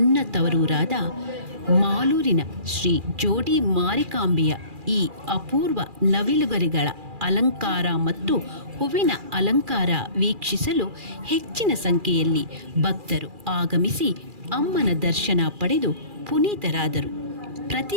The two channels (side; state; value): left; late; 2.4 ms